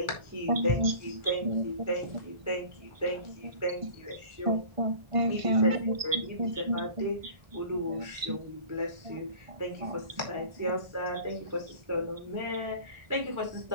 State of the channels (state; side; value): late; left; 1.5 ms